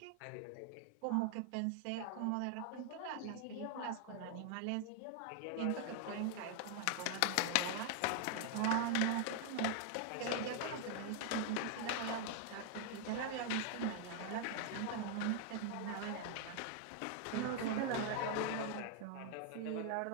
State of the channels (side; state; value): both; different; correlation 0.00